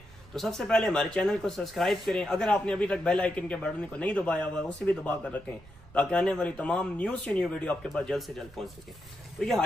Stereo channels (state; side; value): noise; right; rumble, 21 dB below the sound